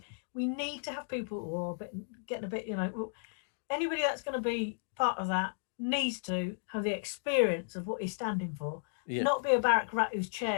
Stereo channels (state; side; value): silent; right; digital silence